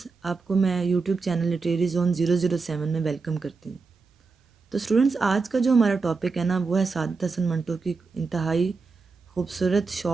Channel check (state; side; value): quieter; left; 4.4 dB